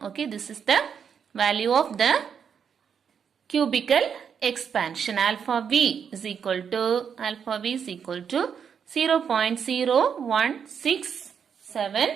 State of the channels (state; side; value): quieter; left; 7.2 dB